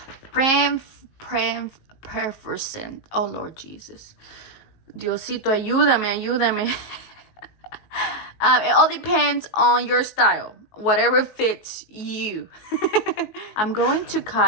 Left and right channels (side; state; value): right; late; 19 ms